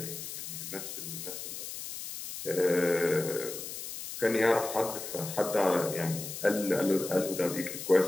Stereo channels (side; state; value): left; noise; hiss, 8 dB below the sound